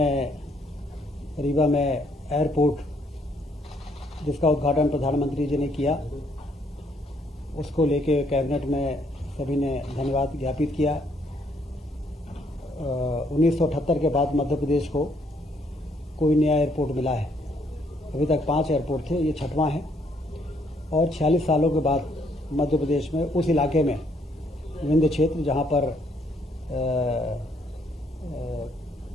रीवा में एयरपोर्ट जिसका उद्घाटन प्रधानमंत्री जी ने किया, उसको लेके कैबिनेट में सभी ने धन्यवाद ज्ञापित किया। 1978 के बाद मध्य प्रदेश को कोई नया एयरपोर्ट मिला है। अभी तक 5 एयरपोर्ट थे, ये 6वां है। और 46 सालों के बाद मध्य प्रदेश में उस इलाके में विंध्य क्षेत्र जहाँ पर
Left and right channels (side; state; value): both; normal; correlation 0.69